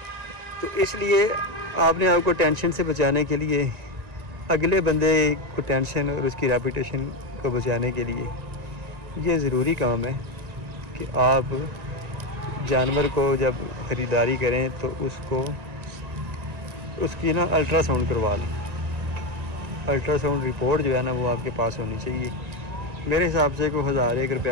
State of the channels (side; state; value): left; late; 1.9 ms